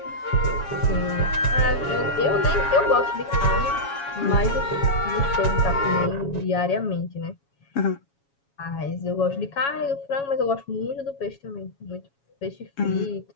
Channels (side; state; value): right; late; 7.2 ms